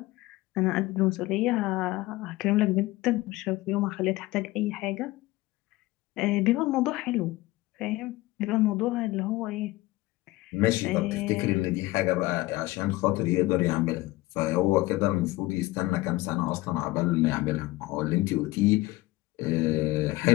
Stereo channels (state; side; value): quieter; right; 19.4 dB